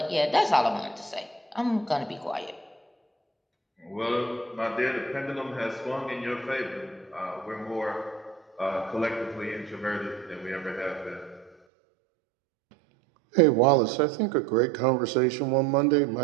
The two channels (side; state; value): left; drops out; at 11.6 s